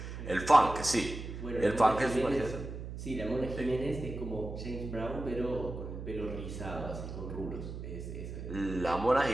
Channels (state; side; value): noise; right; hum, 8 dB below the sound